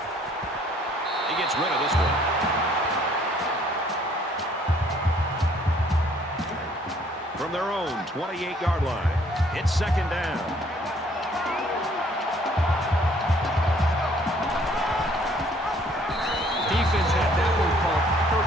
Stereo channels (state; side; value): normal; both; correlation 0.61